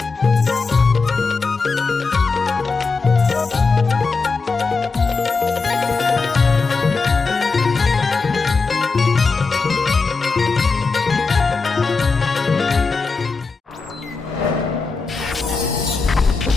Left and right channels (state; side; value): quieter; right; 4.4 dB